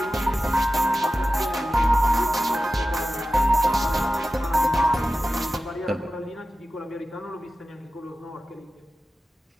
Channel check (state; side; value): normal; both; correlation 0.94